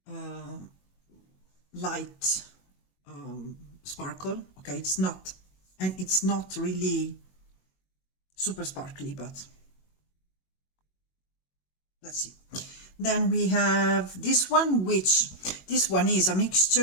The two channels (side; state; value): right; late; 21 ms